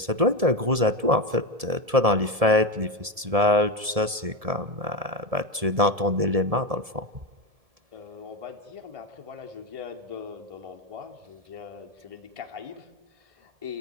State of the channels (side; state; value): left; late; 1.7 ms